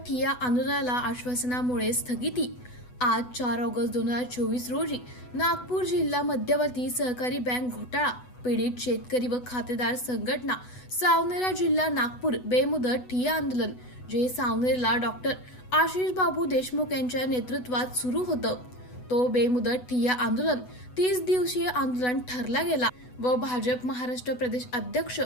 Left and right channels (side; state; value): right; late; 8.1 ms